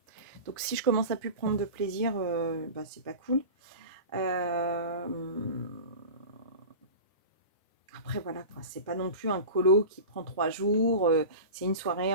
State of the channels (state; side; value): inverted; both; correlation -0.31